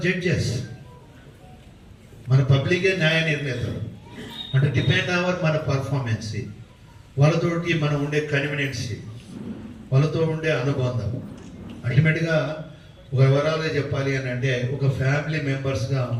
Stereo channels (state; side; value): identical; both; correlation 1.00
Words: judges. మన పబ్లికే న్యాయ నిర్ణేతలు. అంటే డిపెండ్ అవర్ మన పర్ఫార్మెన్స్, వాళ్ళతోటి మనం ఉండే కన్వీనియన్సీ, వాళ్ళతో ఉండే అనుబంధం. అల్టిమేట్గా ఒక వివరాలుగా చెప్పాలి అని అంటే ఒక ఫ్యామిలీ మెంబర్స్గా